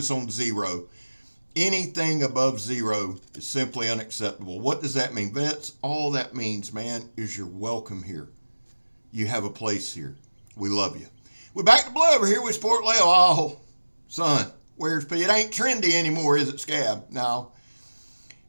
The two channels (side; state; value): both; inverted; correlation -1.00